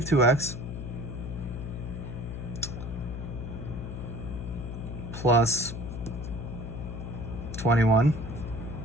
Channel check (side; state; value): left; noise; hum, 6 dB below the sound